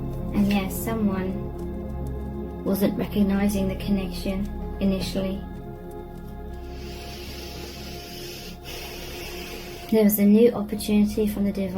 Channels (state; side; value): identical; both; correlation 1.00